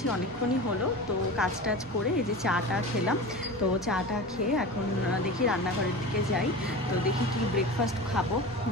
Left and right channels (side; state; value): both; normal; correlation 0.31